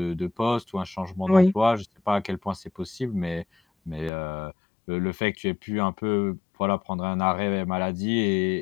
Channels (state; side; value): drops out; right; at 4.1 s